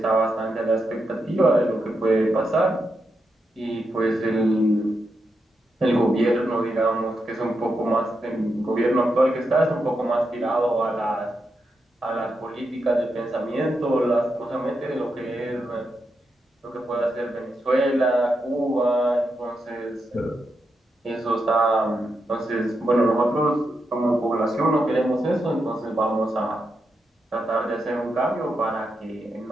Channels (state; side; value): normal; both; correlation 0.85